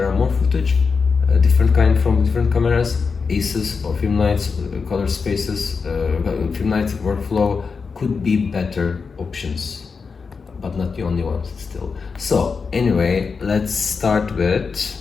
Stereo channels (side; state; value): right; quieter; 5.1 dB